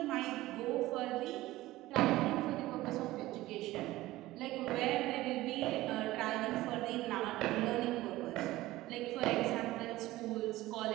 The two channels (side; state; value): left; quieter; 17.2 dB